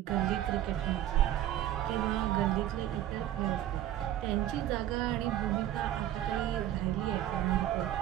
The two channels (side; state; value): left; quieter; 12.5 dB